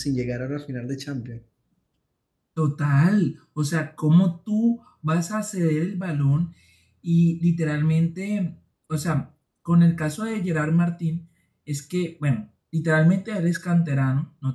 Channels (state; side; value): identical; both; correlation 1.00